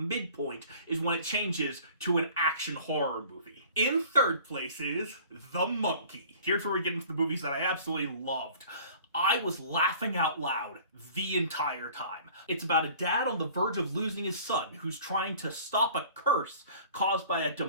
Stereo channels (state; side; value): inverted; both; correlation -0.48